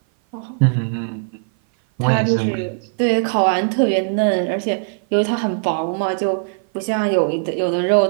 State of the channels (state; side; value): silent; left; 57 dB below the other